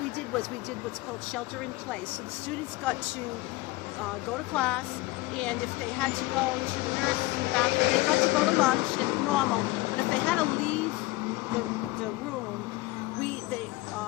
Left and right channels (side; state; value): right; quieter; 20.9 dB